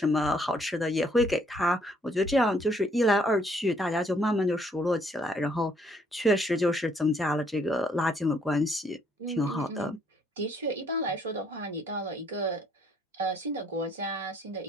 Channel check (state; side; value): normal; both; correlation 0.66